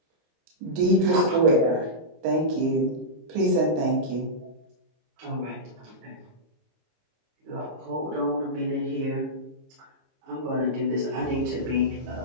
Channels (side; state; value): left; late; 25 ms